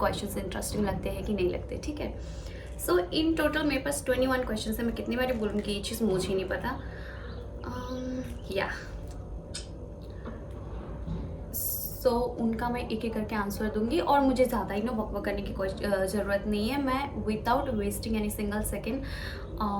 इंटरेस्टिंग लगते हैं कि नहीं लगते. ठीक है, सो इन टोटल मेरे पास 21 क्वेश्चन है. मैं कितनी बार बोलूँगी ये चीज़ मुझे ही नहीं पता. या सो उनका मैं एक एक करके आंसर दूंगी और मुझे ज़्यादा ही ना वक करने की कोई ज़रूरत नहीं है. मैं without wasting any single second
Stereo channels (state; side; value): identical; both; correlation 1.00